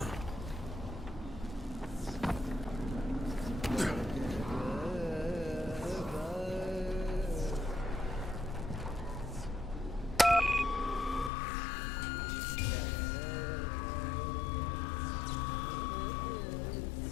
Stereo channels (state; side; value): drops out; right; at 11.3 s